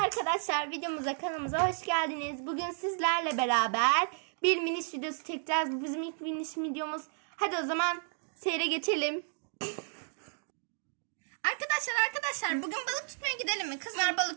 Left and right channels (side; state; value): left; silent; 56 dB below the other